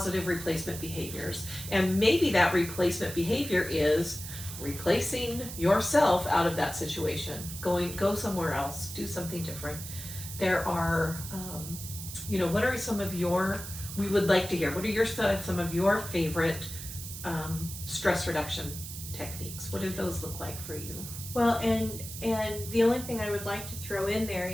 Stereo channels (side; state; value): right; noise; hiss, 10 dB below the sound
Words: replacement behaviors, and maybe that replacement behavior is replacing yourself out of that situation. Go somewhere else. Do something different. There are, what are some of your? We would like to hear. What are some of your favorite stress reduction techniques? What do those look like for you? Well, and the only thing I would like to throw in there